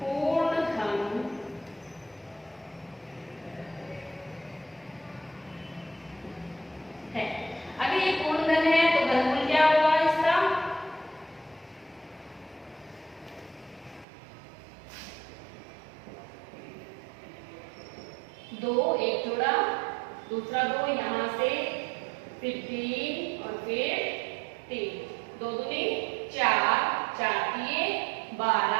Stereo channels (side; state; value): left; drops out; at 14.1 s